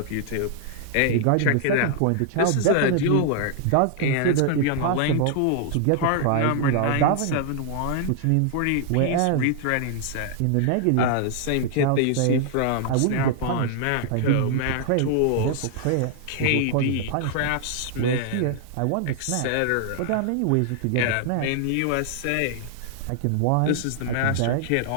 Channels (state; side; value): different; both; correlation -0.01